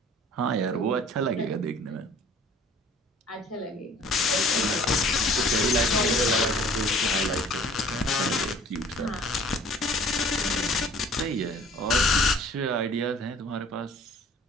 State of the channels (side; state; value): both; normal; correlation 0.51